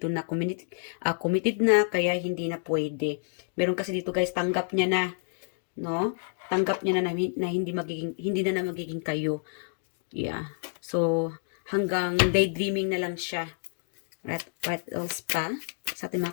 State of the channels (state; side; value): silent; right; digital silence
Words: na committed na, kaya hindi na pwede. Meron kasi dito guys, tanggap niya na, no? Tanggap niya na hindi na magiging kayo. Yeah. So, hanggang daydreaming na lang siya. What else pa? Sa ating